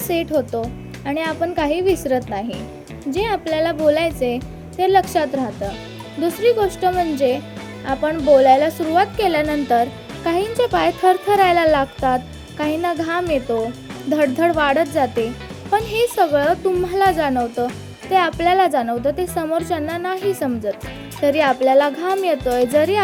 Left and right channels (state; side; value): identical; both; correlation 1.00